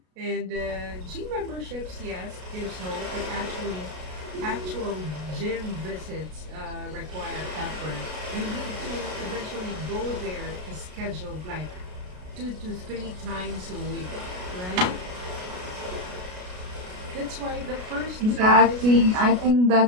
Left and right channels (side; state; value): left; late; 33 ms